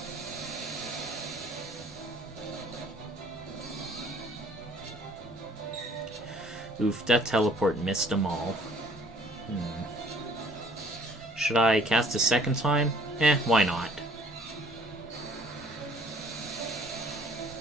Oof, that teleport missed them all. Should I cast a second time? Why not?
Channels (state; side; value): normal; both; correlation 0.56